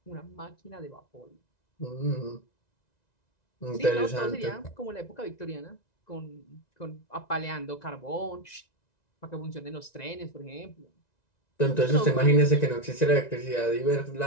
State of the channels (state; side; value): late; right; 1.9 ms